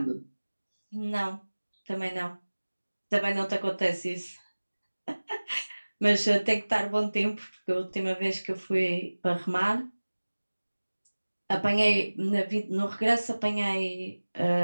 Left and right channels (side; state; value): both; inverted; correlation -1.00